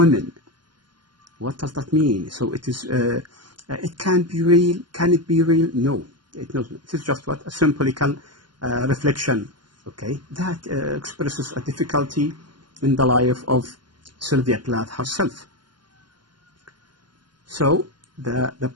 What does that mean? So it is. It can be real. Can it be real? No, it doesn't. It is just what? A symbolical reflection. Okay, that expresses a difficulty in the life of Sylvia Plath herself. So the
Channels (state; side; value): late; left; 0.71 ms